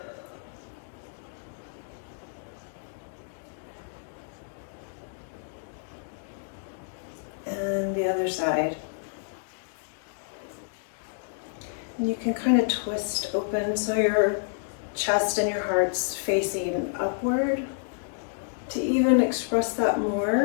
And the other side. And you can kind of twist open so your chest and your heart's facing upward to even express that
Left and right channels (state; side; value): silent; right; digital silence